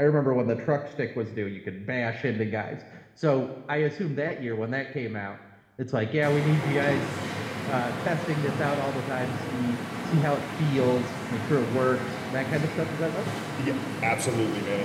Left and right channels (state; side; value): identical; both; correlation 1.00